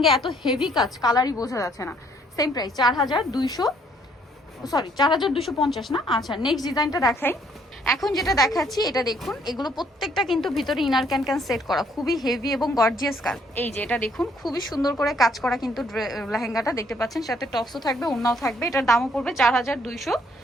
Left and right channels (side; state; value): both; normal; correlation 0.66